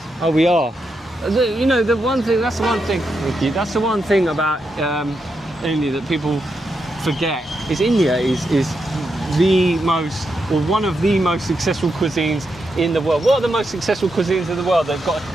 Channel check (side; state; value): both; normal; correlation 0.84